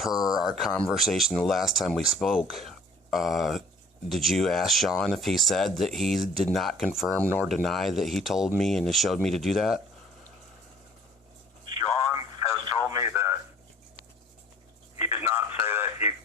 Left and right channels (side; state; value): both; normal; correlation 0.52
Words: our conversation the last time we spoke, did you ask Sean if he said that he did not confirm nor deny that he told me and showed me to do that? Sean has told me that he did not say that.